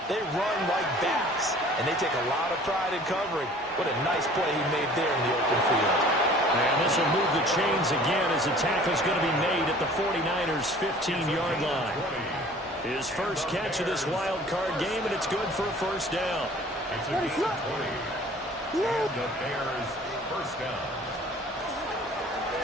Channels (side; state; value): both; normal; correlation 0.49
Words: they run like bats, and they take a lot of pride in covering. What a nice play he made there in the open field. And this will move the chains again as the tackle's going to be made at the 49ers' 15-yard line. His first catch of this wild card game, and it's good for a first down. It's a decent play. And the Bears first down.